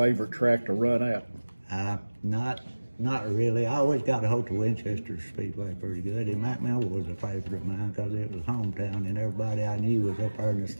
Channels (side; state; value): both; inverted; correlation -1.00